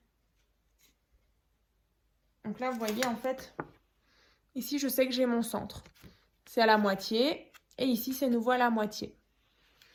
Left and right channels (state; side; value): identical; both; correlation 1.00